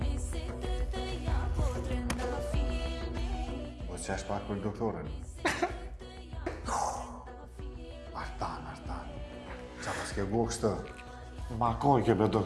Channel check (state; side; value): identical; both; correlation 1.00